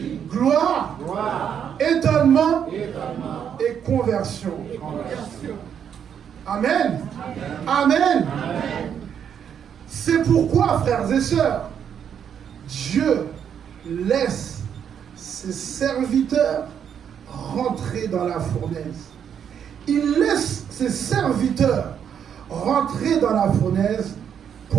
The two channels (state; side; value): quieter; left; 8.3 dB